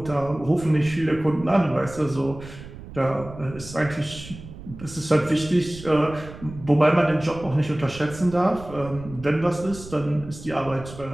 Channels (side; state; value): right; noise; rumble, 15 dB below the sound